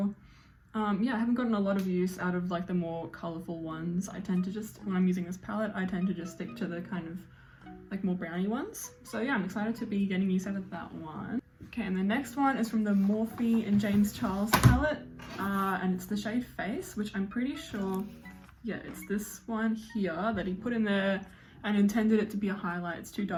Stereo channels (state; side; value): identical; both; correlation 1.00